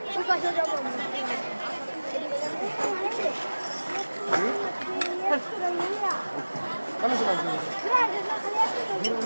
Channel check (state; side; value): inverted; both; correlation -1.00